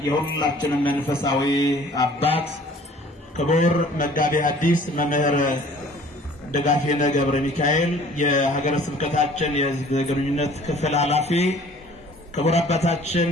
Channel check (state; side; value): normal; both; correlation 0.52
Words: የሁላችንም መንፈሳዊ አባት፣ ክቡር መጋቤ ሐዲስ መምህር ደጋፌነ ገብረ ሚካኤል የሀገረ ስብከታችን የሕዝብ ግንኙነት ክፍል ኃላፊ፣ ክቡር አባታችን